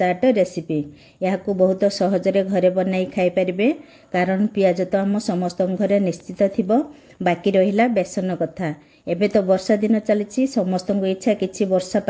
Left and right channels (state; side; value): identical; both; correlation 1.00